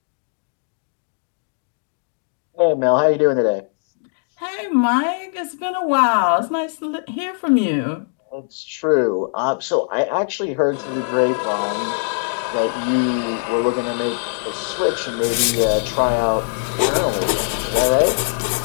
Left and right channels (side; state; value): right; silent; digital silence